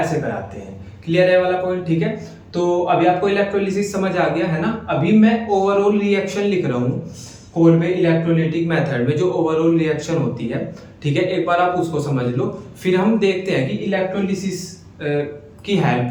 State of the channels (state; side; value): identical; both; correlation 1.00